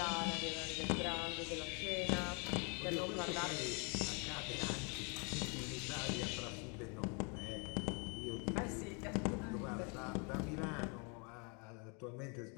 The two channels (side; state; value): right; quieter; 33.5 dB